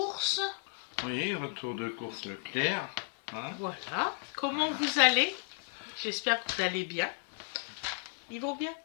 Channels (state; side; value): silent; right; 55 dB below the other